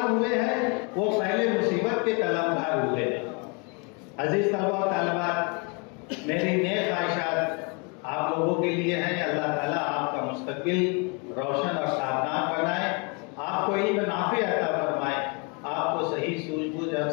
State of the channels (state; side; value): quieter; right; 33.3 dB